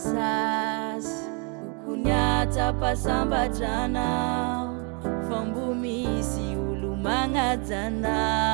Kukunyata pasamba jana Fambumisi ulumanga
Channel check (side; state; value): left; quieter; 35.5 dB